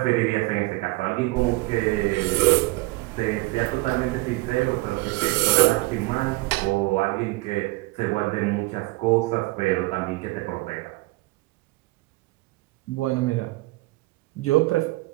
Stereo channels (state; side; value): quieter; left; 22.3 dB